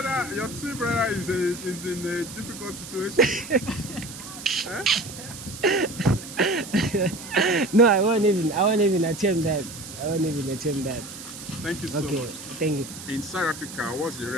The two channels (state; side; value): noise; right; hiss, 12 dB below the sound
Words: your twin brother is in a difficult situation. Huh? No, I won't even attempt that. I won't even attempt that. Thank you so Okay, much. thank you. In South Africa, what's the